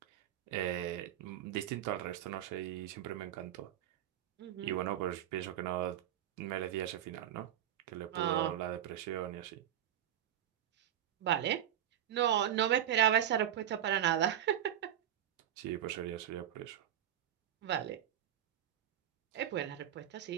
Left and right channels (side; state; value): left; quieter; 11.2 dB